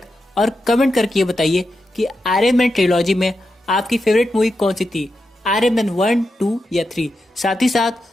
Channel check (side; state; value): both; normal; correlation 0.88